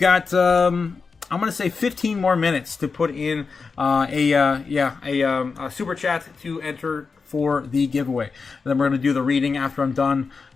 I'm going to say 15 more minutes to put in a super chat to enter for the giveaway. And then we're going to do the reading after I'm done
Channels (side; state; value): right; quieter; 4.8 dB